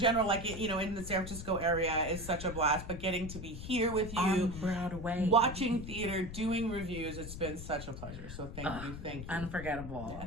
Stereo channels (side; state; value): left; noise; rumble, 9 dB below the sound